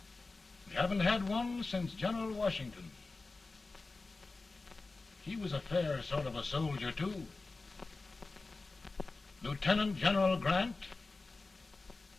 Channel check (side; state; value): right; quieter; 3.6 dB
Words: We haven't had one since General Washington. He was a fair sort of a soldier, too. Lieutenant General Grant,